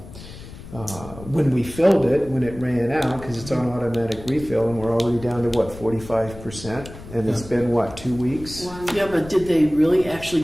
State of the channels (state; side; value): noise; left; rumble, 15 dB below the sound